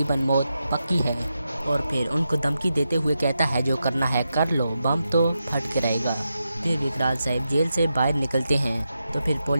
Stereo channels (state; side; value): inverted; both; correlation -0.88